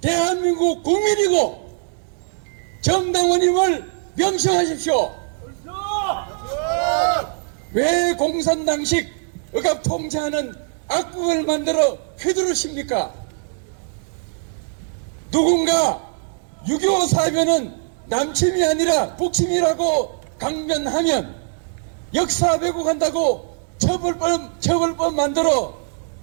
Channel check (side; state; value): left; silent; digital silence